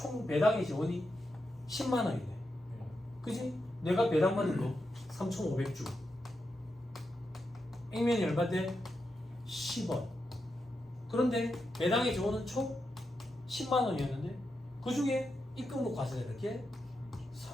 배당의 재원이 10만원이네. 그지? 내가 배당 받은 거 3,500주. 액면이 얼마인데? 10원. 그런데 배당의 재원은 총 10만원이었는데 그 중에 입금으로 과세되는 게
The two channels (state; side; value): normal; both; correlation 0.86